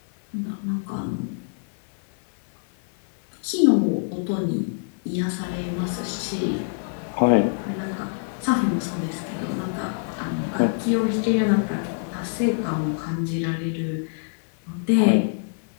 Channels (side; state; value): right; silent; 56 dB below the other